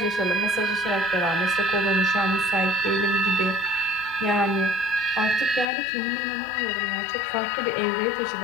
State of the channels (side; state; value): right; drops out; at 5.7 s